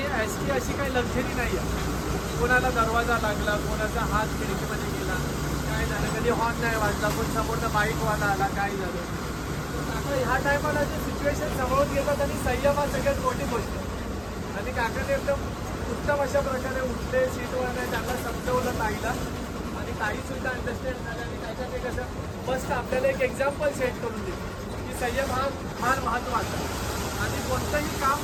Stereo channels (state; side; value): identical; both; correlation 1.00